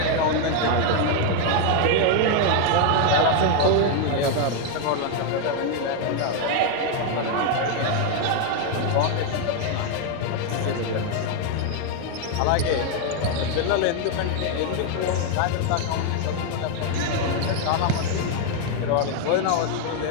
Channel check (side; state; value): both; different; correlation 0.01